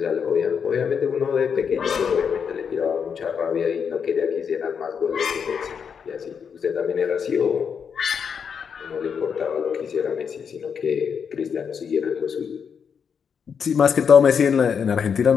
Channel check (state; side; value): quieter; right; 6.8 dB